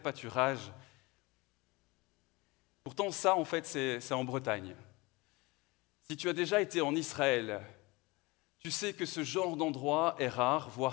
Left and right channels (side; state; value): right; quieter; 23.9 dB